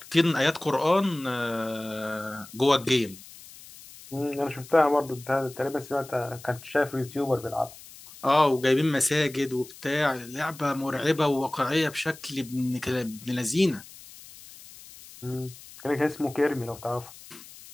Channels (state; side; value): noise; left; hiss, 19 dB below the sound